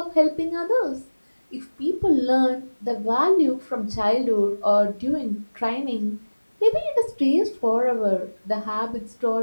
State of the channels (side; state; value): both; inverted; correlation -1.00